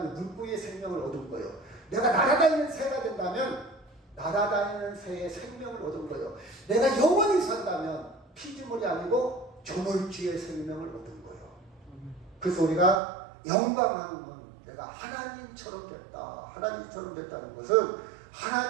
물고기의 생명을 얻은 거예요. 내가 날아다니는 새가 된다면 날아다니는 새의 생명을 얻은 거예요. 내가 영원히 산다면 피조물이 아니고 조물주의 생명을 얻은 거예요. 그래서 우리가 영광하는 건 내가 하나님처럼 됐다. 하나님처럼 됐다는 것은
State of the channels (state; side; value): drops out; left; at 13.0 s